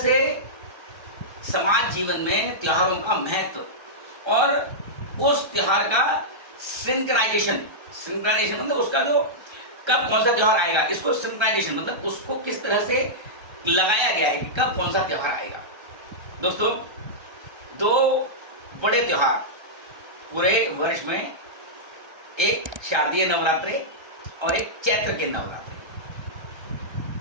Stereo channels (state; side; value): late; left; 1.3 ms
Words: समाज जीवन में त्योहारों का महत्व और उस त्योहार का सिंक्राइजेशन मतलब उसका जो कब कौन सा त्योहार आएगा, इसको सिंक्राइजेशन मतलब उसको किस तरह से लगाया गया है कि कब कौन सा त्योहार आएगा। दोस्तों, 2 बड़े त्योहार पूरे वर्ष में, एक शारदीय नवरात्रि और एक चैत्र के नवरात्रि,